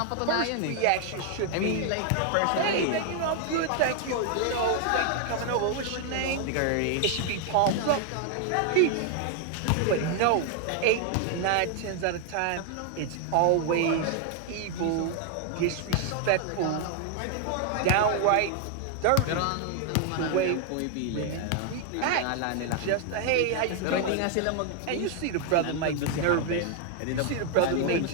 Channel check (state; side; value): different; both; correlation 0.00